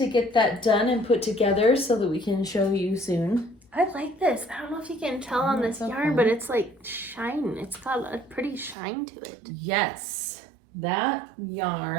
get that done and put together so that we can show you soon. I like this. I don't know if you can tell on this yarn, but it's like shine. It's got a pretty shine to it. Yes. That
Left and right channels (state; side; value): drops out; left; at 8.8 s